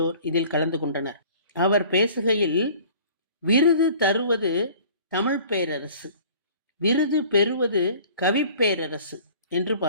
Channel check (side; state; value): both; inverted; correlation -0.49